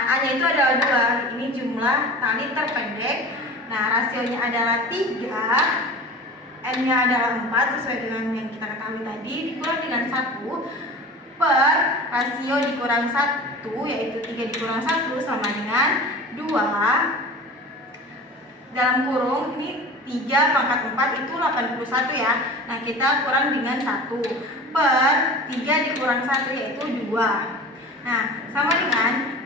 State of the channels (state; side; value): normal; both; correlation 0.36